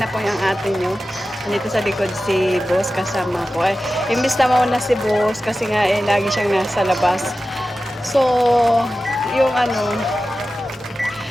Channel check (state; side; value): normal; both; correlation 0.94